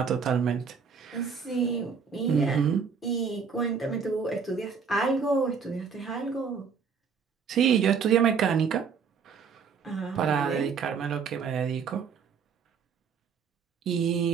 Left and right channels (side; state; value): left; quieter; 6.1 dB